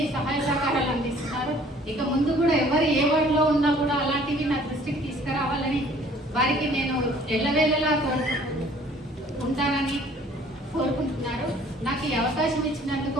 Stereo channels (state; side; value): normal; both; correlation 0.55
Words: సహాయ సహకారాలు అందిస్తున్నారు. ఇక ముందు కూడా ఎవరు ఏ వార్డులో ఉన్నా కూడా అలాంటివి నా దృష్టికి తీసుకురావాలని వారికి నేను ఎల్లవేళలా ఉంటానని కోరుకుంటున్నారు. నాకు ఈ అవకాశం